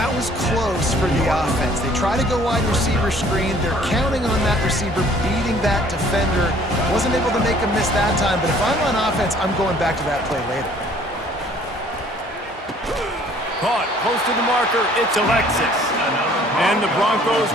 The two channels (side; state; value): both; normal; correlation 0.56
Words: was close for the offense. They try to go wide receiver screen. They're counting on that receiver beating that defender. Wasn't able to make him miss that time, but if I'm on offense, I'm going back to that play later. Caught close to the marker. It's Alexis. And the Broncos